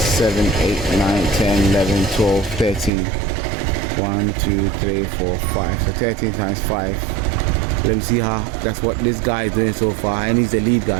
8, 9, 10, 11, 12, 13. 1, 2, 3, 4, 5. So 13 times 5. Let me see how, that's what this guy is doing so far. And he's the lead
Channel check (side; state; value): left; drops out; at 2.9 s